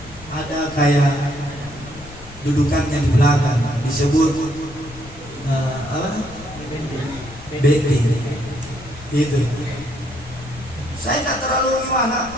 ada kayak dudukannya di belakang, disebut apa? Bendi. Itu. Saya tidak terlalu gimana.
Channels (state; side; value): noise; left; rumble, 18 dB below the sound